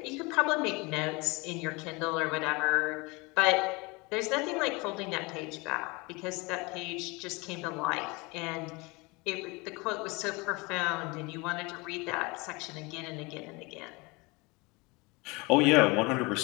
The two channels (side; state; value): right; quieter; 26.0 dB